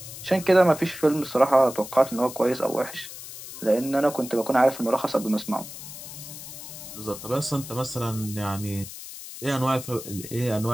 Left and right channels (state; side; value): noise; left; hiss, 12 dB below the sound